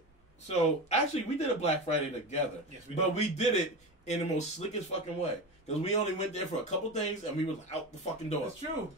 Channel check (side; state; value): both; normal; correlation 0.24